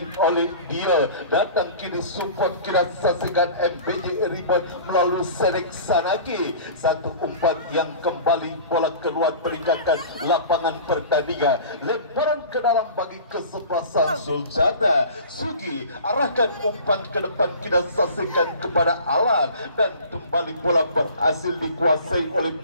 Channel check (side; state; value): both; inverted; correlation -0.41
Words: oleh dia. Datang kini support, kita saksikan MBJ Ribon melalui Sedek Sanaki. Satu umpan yang kembali bola keluar meninggalkan lapangan pertandingan. Lemparan ke dalam bagi kesebelasan Sulcata. Sugi arahkan umpan ke depan, kita saksikan kepada Alan, dan kembali bola berhasil dikuasai oleh